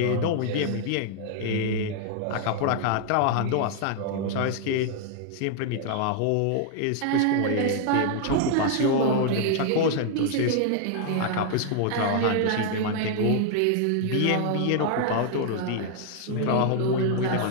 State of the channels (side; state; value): both; different; correlation 0.00